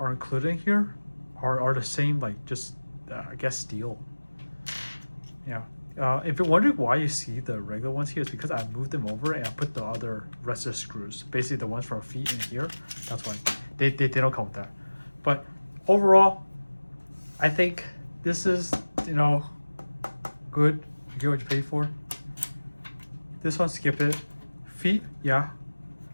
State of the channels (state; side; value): inverted; both; correlation -1.00